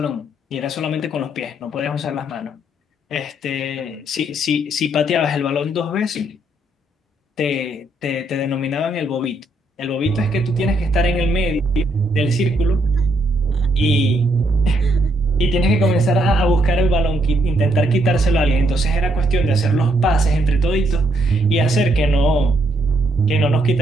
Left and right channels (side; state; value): both; normal; correlation 0.74